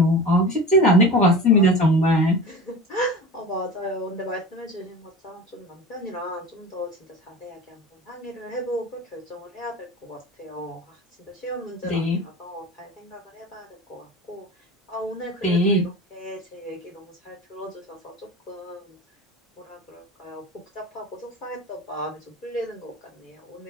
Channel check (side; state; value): both; normal; correlation 0.33